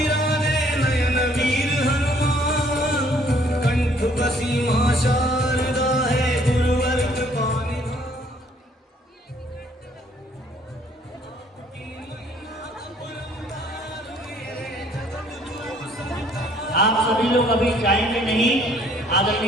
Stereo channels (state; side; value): normal; both; correlation 0.61